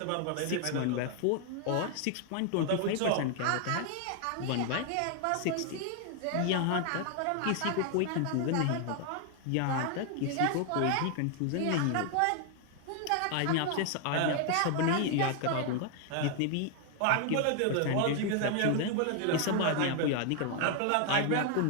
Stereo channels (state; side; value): different; both; correlation 0.00